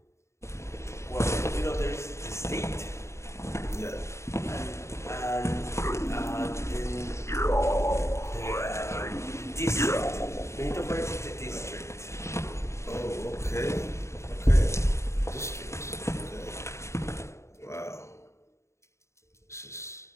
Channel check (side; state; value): right; late; 0.14 ms